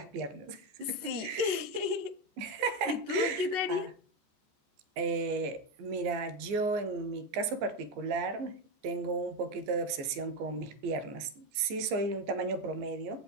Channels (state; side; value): late; left; 14 ms